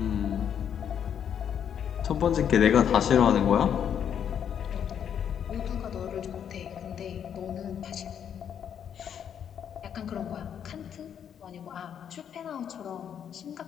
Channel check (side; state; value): right; quieter; 8.6 dB